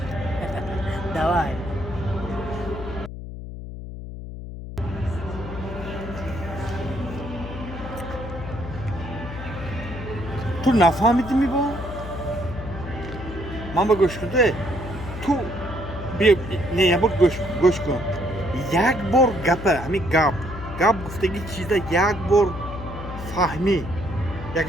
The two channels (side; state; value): left; noise; hum, 10 dB below the sound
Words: دوای تو نفهمیدی می با؟ من با گوش کرده تو بیا نه یه بار گوش کن یک بار گپه همین گپ گفتگی چیزا یک بار فهمی